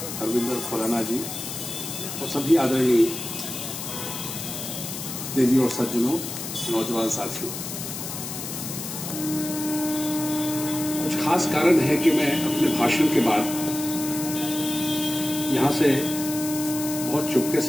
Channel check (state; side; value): noise; left; hiss, 7 dB below the sound